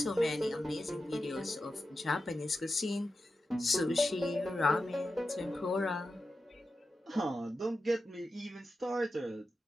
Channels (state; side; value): normal; both; correlation 0.91